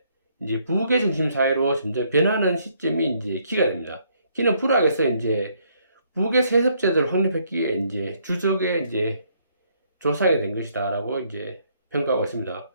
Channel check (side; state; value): both; inverted; correlation -0.69